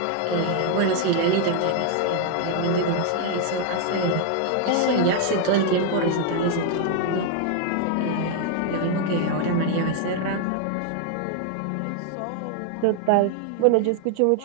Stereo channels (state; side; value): different; both; correlation 0.00